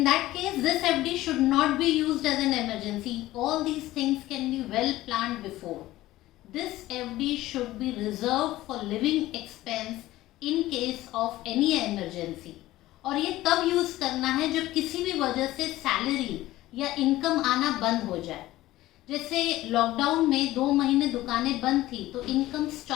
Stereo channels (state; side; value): quieter; right; 16.4 dB